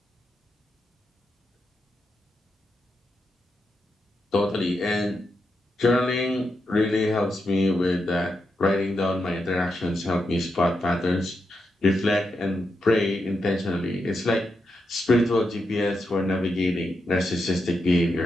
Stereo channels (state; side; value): normal; both; correlation 0.85